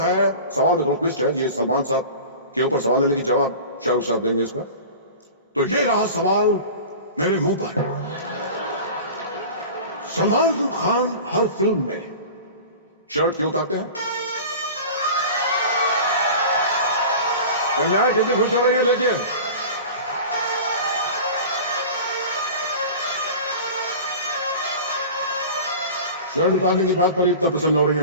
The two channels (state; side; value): inverted; both; correlation -0.36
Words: सवाल में थोड़ा ट्विस्ट है। ये सलमान साहब के ऊपर सवाल है लेकिन जवाब शाहरुख साहब देंगे इसका। तो ये रहा सवाल मेरे मुंह पर। सलमान खान हर फिल्म में शर्ट क्यों उतारते हैं? कन्या कितनी खुश हो रही है, देखिए। शर्ट उतारने की बात पर इतना प्रसन्न हो रही हैं